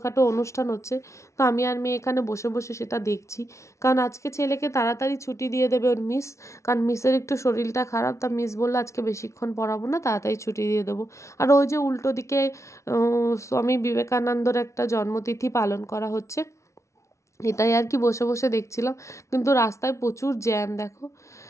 অনুষ্ঠান হচ্ছে। তো আমি আর মেয়ে এখানে বসে বসে সেটা দেখছি, কারণ আজকে ছেলেকে তাড়াতাড়ি ছুটি দিয়ে দেবে ওর মিস, কারণ মিসের একটু শরীরটা খারাপ, তা মিস বললো আজকে বেশিক্ষণ পড়াবো না, তাড়াতাড়ি ছুটি দিয়ে দেবো। আর ওই যে উল্টো দিকে স্বামী বিবেকানন্দর একটা জন্মতিথি পালন করা হচ্ছে, এটাই আর কি বসে বসে দেখছিলাম। কিন্তু রাস্তায় প্রচুর জ্যাম, দেখো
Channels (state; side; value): late; right; 0.14 ms